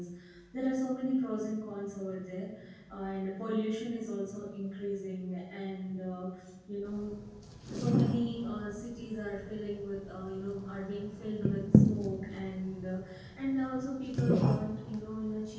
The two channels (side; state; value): both; identical; correlation 1.00